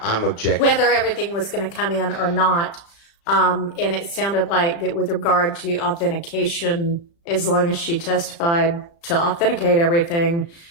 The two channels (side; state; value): right; late; 35 ms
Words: I'm objecting. everything was going to come in or not. And it sounded like that with regard to authentication, as long as she testified to authenticate everything,